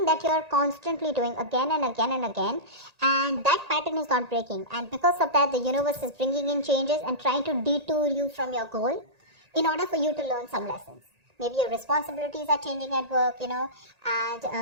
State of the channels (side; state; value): left; late; 1.8 ms